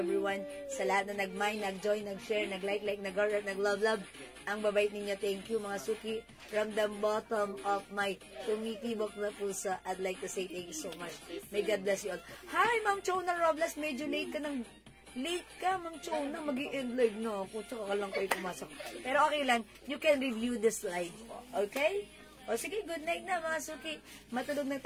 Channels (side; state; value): both; identical; correlation 1.00